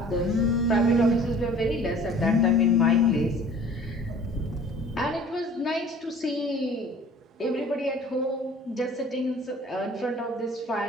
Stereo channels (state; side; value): normal; both; correlation 0.48